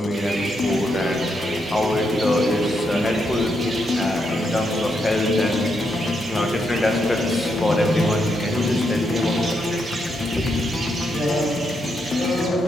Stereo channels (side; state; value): both; normal; correlation 0.80